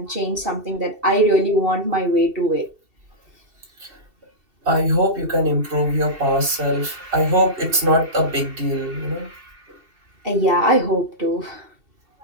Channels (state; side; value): late; left; 2.7 ms